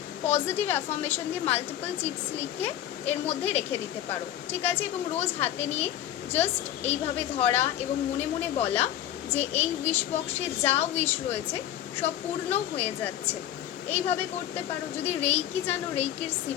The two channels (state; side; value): quieter; right; 12.0 dB